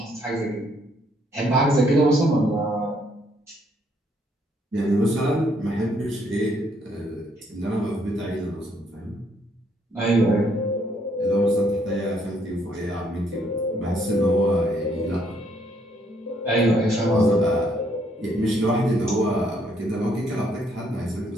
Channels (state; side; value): normal; both; correlation 0.69